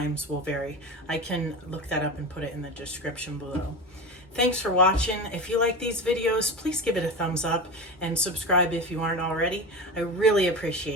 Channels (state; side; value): normal; both; correlation 0.26